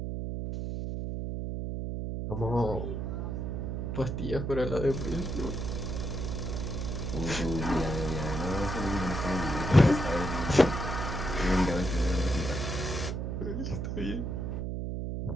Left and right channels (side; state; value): right; noise; hum, 3 dB below the sound